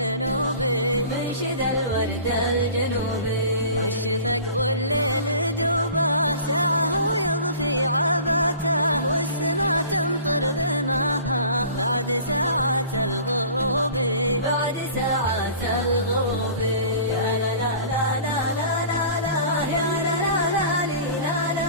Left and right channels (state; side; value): inverted; both; correlation -0.43